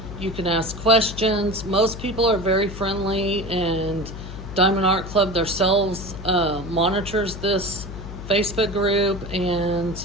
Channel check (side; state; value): left; noise; hum, 10 dB below the sound